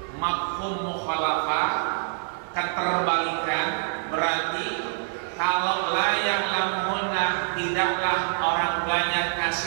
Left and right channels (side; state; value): left; silent; digital silence